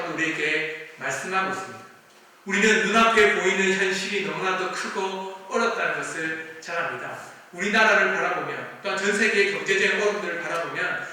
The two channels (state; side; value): identical; both; correlation 1.00